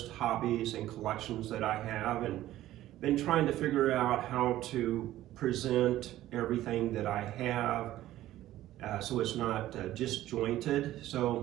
hobbies, and collections that I have, and been trying to figure out how to present everything that I have so it's not disjointed.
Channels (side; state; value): left; quieter; 14.4 dB